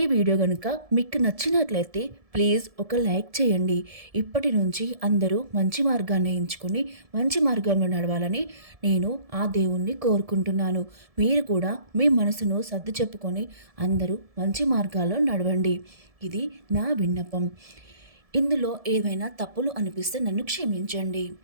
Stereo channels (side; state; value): left; late; 1.7 ms